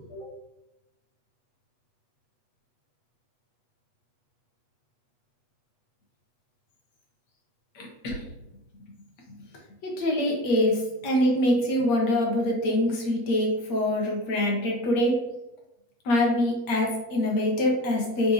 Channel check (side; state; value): right; late; 8.5 ms